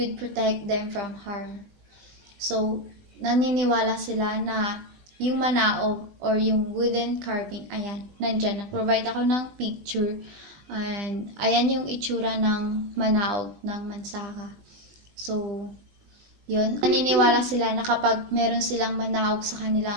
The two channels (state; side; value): late; left; 20 ms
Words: protect them from harm. So, naniniwala sila na yung manaog or yung wooden carving, ayan, nandyan. Nag-provide ako ng picture. And ayan yung itsura ng manaog ng Mansaka. So, yun. Naniniwala sila na kapag meron silang manaog sa